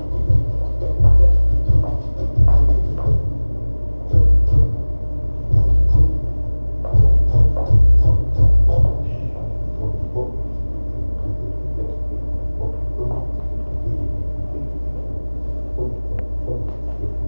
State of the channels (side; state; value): both; inverted; correlation -1.00